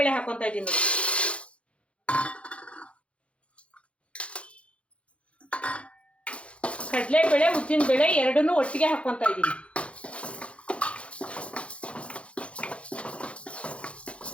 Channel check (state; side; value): late; right; 0.061 ms